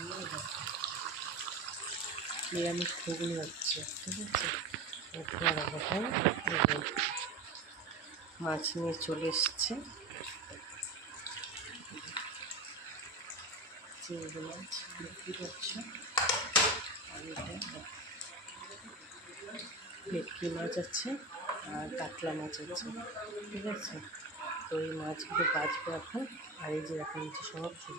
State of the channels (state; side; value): quieter; left; 3.2 dB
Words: নিরামিষ ঘুগনি হচ্ছে, ঠিক আছে। তোমার এখন মাছ নিয়ে চলে এসছে, চিংড়ি মাছ বিক্রি করছে। আর এটা ভেটকি মাছ আছে আর কাতলা মাছ আছে, ঠিক আছে। তো এই মাছগুলো বাঁচবো এখন। আর এই যে এখন হচ্ছে সব